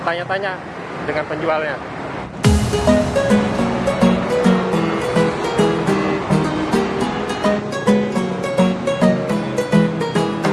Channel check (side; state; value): both; identical; correlation 1.00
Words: tanya-tanya dengan penjualnya.